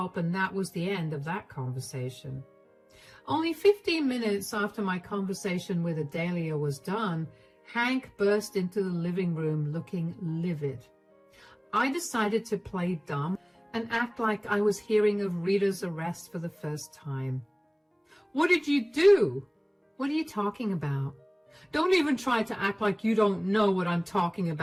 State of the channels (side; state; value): both; identical; correlation 1.00